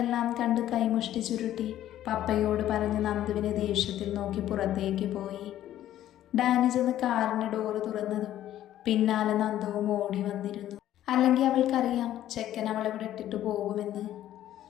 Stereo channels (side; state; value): right; quieter; 12.5 dB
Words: കണ്ട് കൈമുഷ്ടി ചുരുട്ടി പപ്പയോട് പറഞ്ഞ് നന്ദുവിനെ ദേഷ്യത്തിൽ നോക്കി പുറത്തേക്ക് പോയി. ഡാനി ചെന്ന് കാറിൻ്റെ ഡോറ് തുറന്നതും പിന്നാലെ നന്ദുവും ഓടി വന്നിരുന്നു. അല്ലെങ്കിൽ അവൾക്കറിയാം ചെക്കൻ അവളെവിടെ ഇട്ടിട്ട് പോകുമെന്ന്.